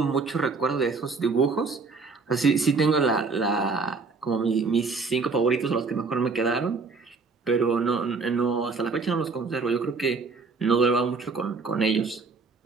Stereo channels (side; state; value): left; quieter; 4.3 dB